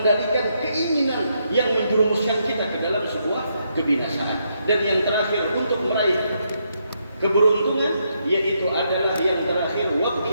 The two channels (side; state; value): both; inverted; correlation -0.78